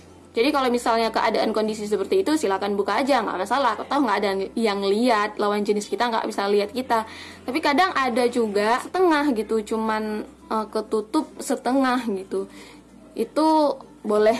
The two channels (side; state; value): both; identical; correlation 1.00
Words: Jadi kalau misalnya keadaan kondisi seperti itu, silakan buka aja, nggak masalah. Atau nggak ada yang lihat, lawan jenis kita nggak bisa lihat kita. Tapi kadang ada juga setengah gitu, cuman ketutup setengah gitu. Itu